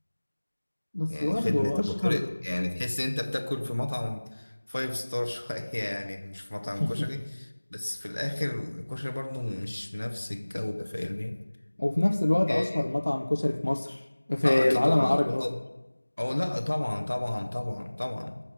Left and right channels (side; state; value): both; inverted; correlation -1.00